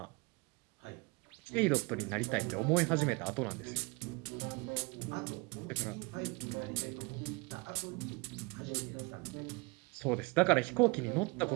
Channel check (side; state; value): left; quieter; 27.0 dB